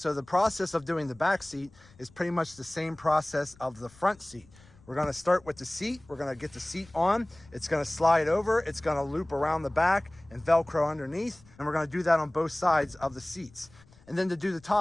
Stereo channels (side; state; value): left; noise; rumble, 26 dB below the sound